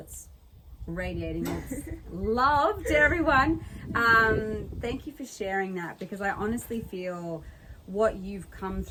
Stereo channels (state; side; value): identical; both; correlation 1.00